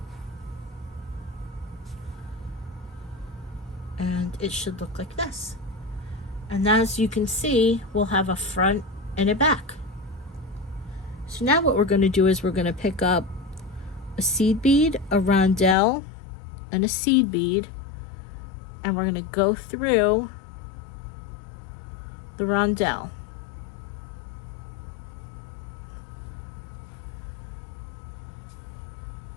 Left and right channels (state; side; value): drops out; right; at 15.8 s